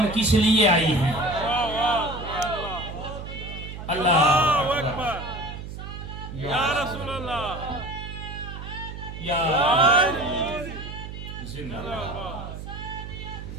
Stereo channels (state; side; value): noise; right; hum, 10 dB below the sound